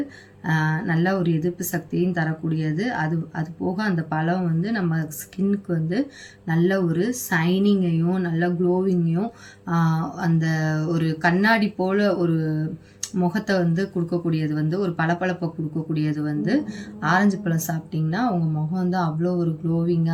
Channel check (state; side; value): identical; both; correlation 1.00